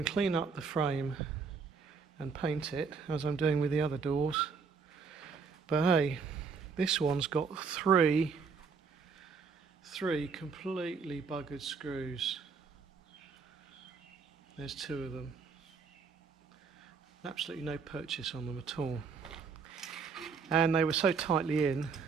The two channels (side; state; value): left; quieter; 5.4 dB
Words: clean up the frame and paint it as I'm doing with the other doors. But hey, this one's got three completely buggered screws. There's two of them. Absolutely no purchase on them at all. And they were so tightly in